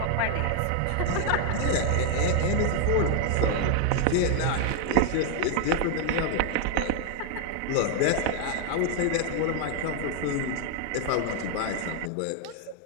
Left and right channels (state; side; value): different; both; correlation 0.00